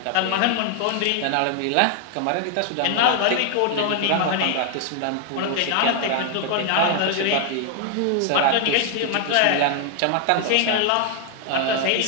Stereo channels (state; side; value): different; both; correlation 0.00